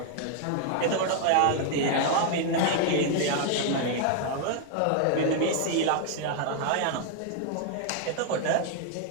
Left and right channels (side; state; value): both; different; correlation 0.00